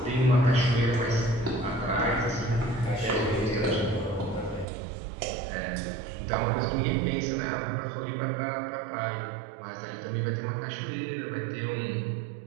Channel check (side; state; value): left; drops out; at 4.7 s